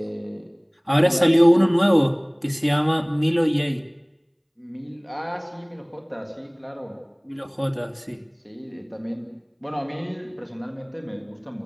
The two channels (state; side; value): identical; both; correlation 1.00